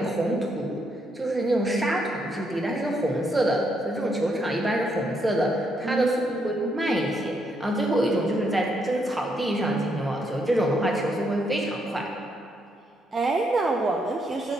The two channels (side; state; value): both; normal; correlation 0.76